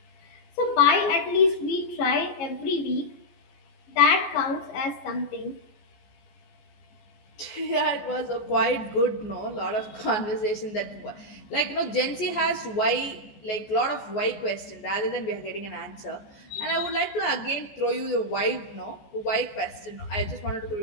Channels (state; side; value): late; right; 14 ms